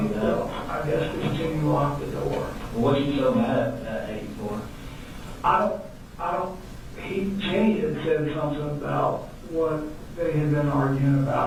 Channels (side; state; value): both; identical; correlation 1.00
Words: you do that? Well, I guess because Jenny locked the door. What are you so mad at 84? Jenny had said something about what they had been arguing